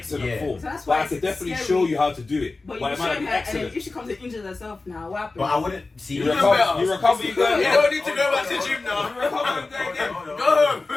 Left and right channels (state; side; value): quieter; right; 3.6 dB